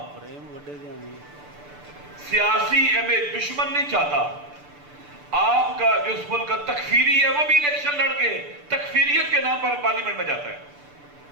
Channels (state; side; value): late; left; 6.8 ms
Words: सियासी इमेज दुश्मन नहीं चाहता। आपका जो इस मुल्क का तकफीरी है वो भी इलेक्शन लड़के तकफीरियत के नाम पर पार्लियामेंट में जाता है।